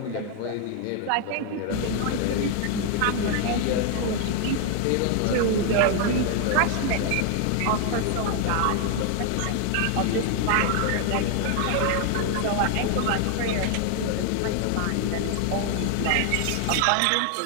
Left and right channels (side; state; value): both; different; correlation 0.00